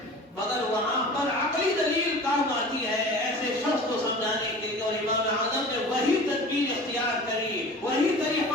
مگر وہاں پر عقلی دلیل کام آتی ہے ایسے شخص کو سمجھانے کے لیے، اور امام اعظم نے وہی تدبیر اختیار کری، وہی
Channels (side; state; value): both; normal; correlation 0.39